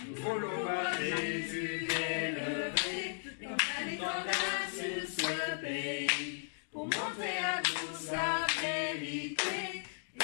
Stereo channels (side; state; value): right; silent; digital silence